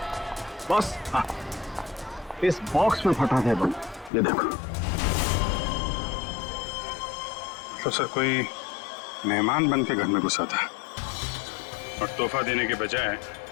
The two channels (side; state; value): right; drops out; at 4.1 s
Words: बॉस, हाँ इस बॉक्स में फटा था बम, ये देखो। तो सर कोई मेहमान बन के घर में घुसा था और तोहफा देने के बजाय